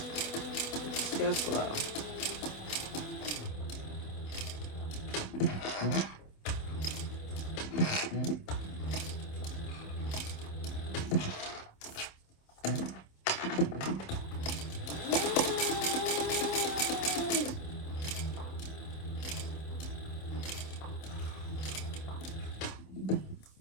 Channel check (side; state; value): right; late; 27 ms